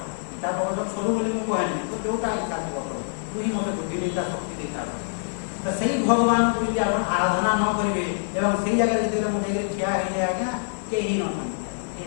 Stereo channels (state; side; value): silent; right; digital silence